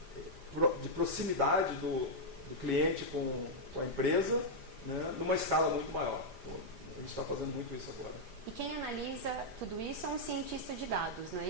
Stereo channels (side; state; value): left; late; 5.0 ms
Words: de proximidade do cliente com a empresa, né, numa escala muito maior. Então, a gente está fazendo muito isso agora. E quem analisa tudo isso é um cientista de dados, não é